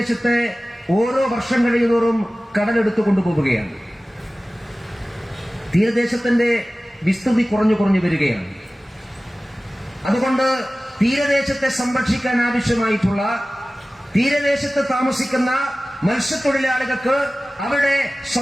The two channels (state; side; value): normal; both; correlation 0.97